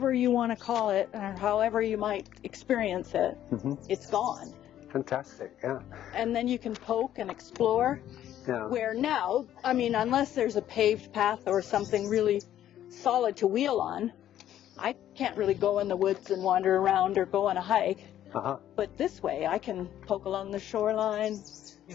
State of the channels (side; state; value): right; quieter; 11.6 dB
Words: you want to call it, or however you might experience it. It's gone. Fantastic, yeah. And then you can poke and explore. Yeah. Where now, I mean, unless there's a paved path or something really solid to wheel on, I can't really go in the woods and wander around or go on a hike. But this way, I can poke along the shoreline,